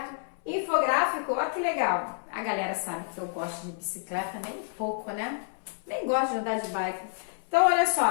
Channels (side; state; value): right; silent; 59 dB below the other